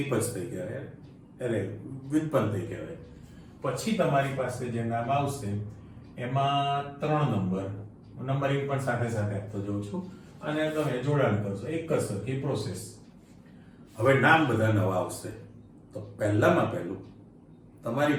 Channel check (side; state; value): both; identical; correlation 1.00